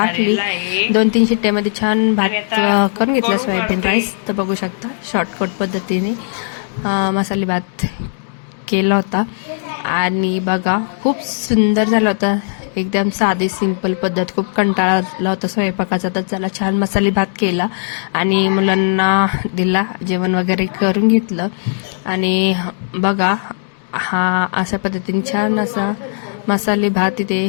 2-3 शिट्ट्यामध्ये छान भात करून घेतला, सोयाबीन राईस. तर बघू शकता शॉर्टकट पद्धतीने मसाले भात केला होता. आणि बघा, खूप सुंदर झाला होता, एकदम साधी सिंपल पद्धत. खूप कंटाळा आला होता स्वयंपाकाचा, तर चला छान मसाले भात केला आणि मुलांना दिला, जेवण वगैरे करून घेतलं. आणि बघा, हा अशा पद्धतीने छान असा मसाले भात इथे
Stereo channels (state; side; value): silent; right; digital silence